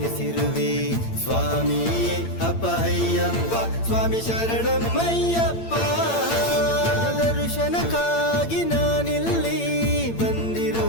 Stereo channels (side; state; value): right; late; 8.8 ms